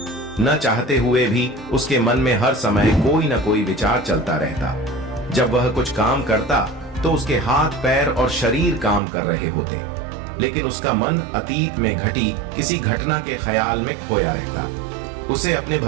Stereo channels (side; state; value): left; drops out; at 9.0 s